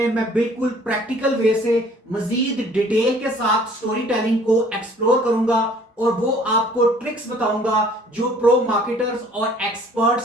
मैं बिल्कुल प्रैक्टिकल वे से मजीद डिटेल के साथ स्टोरी टेलिंग को एक्सप्लोर करूंगा और वो आपको ट्रिक्स बताऊंगा जो प्रो मार्केटर्स और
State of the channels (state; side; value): normal; both; correlation 0.55